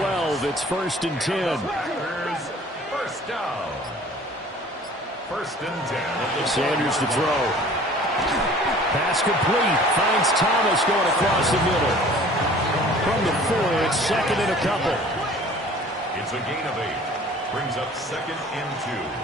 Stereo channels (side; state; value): both; normal; correlation 0.49